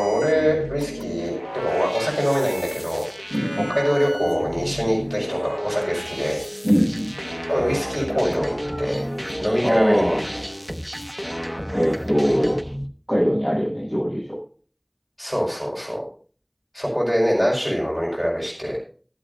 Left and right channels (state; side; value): identical; both; correlation 1.00